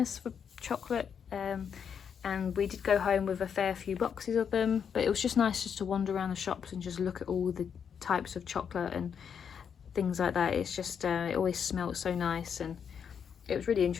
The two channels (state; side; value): quieter; right; 7.4 dB